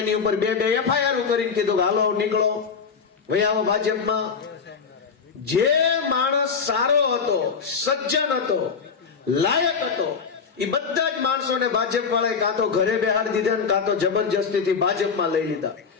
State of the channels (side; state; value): right; quieter; 5.8 dB